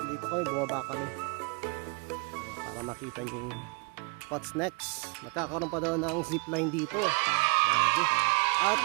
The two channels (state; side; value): quieter; left; 31.6 dB